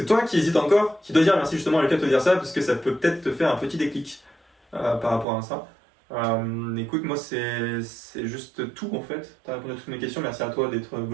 toi qui hésites encore, qui dois dire merci justement à Lucas de te dire ça, parce que ça peut peut-être te faire un petit déclic par rapport à ça. Écoute, moi c'est juste tout en fait. T'as répondu à toutes mes questions, merci à toi d'être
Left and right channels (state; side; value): drops out; left; at 5.2 s